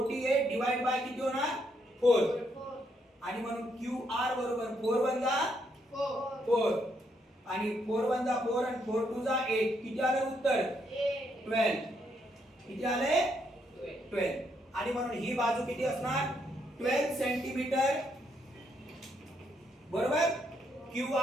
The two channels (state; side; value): normal; both; correlation 0.75